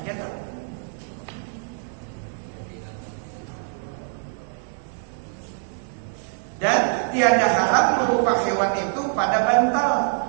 tuh? tiada haram berupa hewan itu pada bantal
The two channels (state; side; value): silent; left; 58 dB below the other